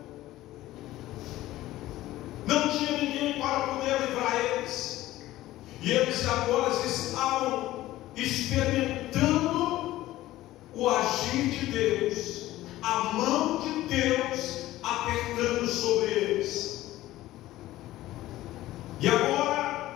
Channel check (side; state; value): right; quieter; 15.8 dB